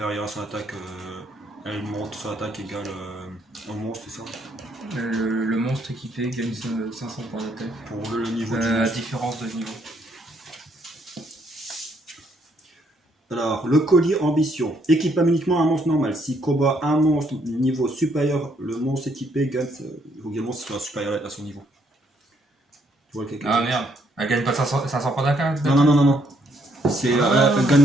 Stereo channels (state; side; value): normal; both; correlation 0.71